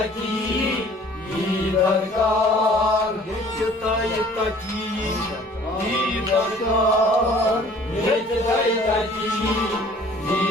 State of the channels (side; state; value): both; normal; correlation 0.53